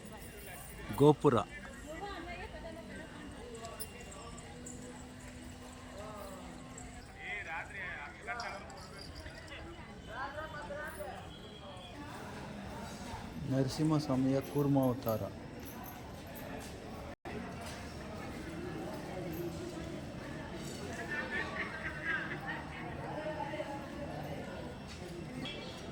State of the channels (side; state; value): both; identical; correlation 1.00